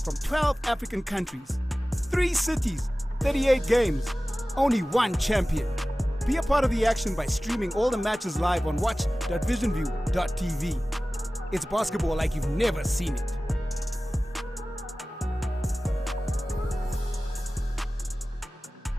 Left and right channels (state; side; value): normal; both; correlation 0.97